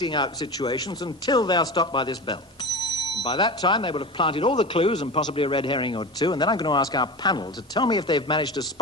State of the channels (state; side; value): normal; both; correlation 0.28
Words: out situations until they are stopped by this bell. And by that time, they will have planted all the clues and possibly a red herring or two, and then I'm going to ask our panel to tell me if they've managed to